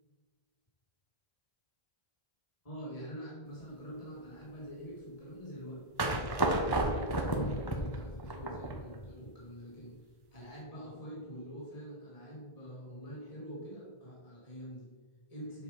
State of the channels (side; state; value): right; late; 1.1 ms